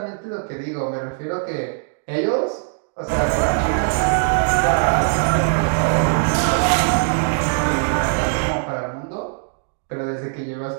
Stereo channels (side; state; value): left; silent; digital silence